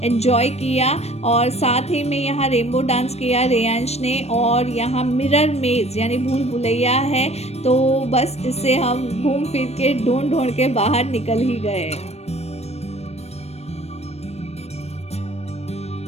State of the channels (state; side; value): late; right; 0.31 ms